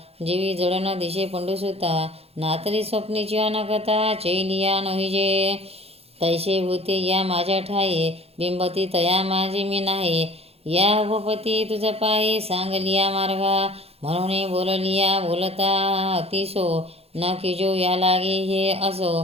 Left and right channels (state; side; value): late; left; 0.29 ms